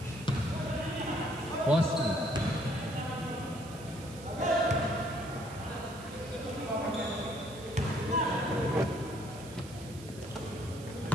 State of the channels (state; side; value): noise; right; hiss, 18 dB below the sound